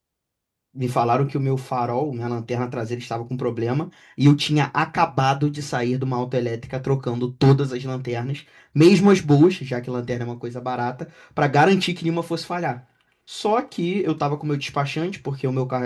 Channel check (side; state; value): both; identical; correlation 1.00